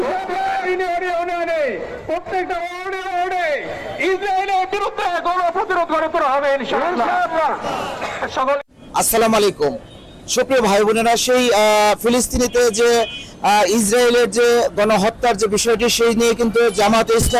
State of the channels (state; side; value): identical; both; correlation 1.00